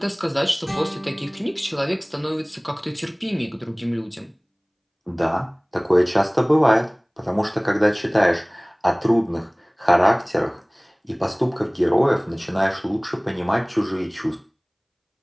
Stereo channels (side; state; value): both; identical; correlation 1.00